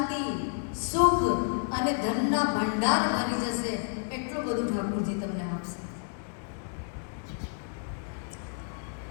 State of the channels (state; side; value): silent; right; 58 dB below the other